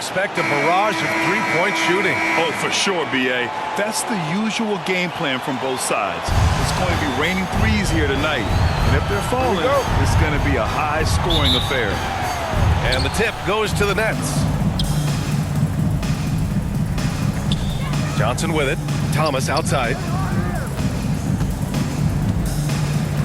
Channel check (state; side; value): identical; both; correlation 1.00